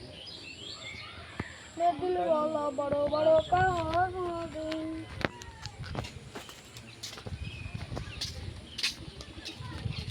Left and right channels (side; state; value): both; identical; correlation 1.00